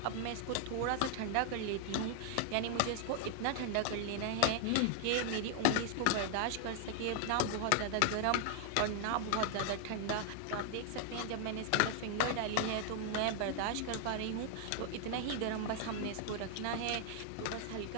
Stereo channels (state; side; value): different; both; correlation 0.00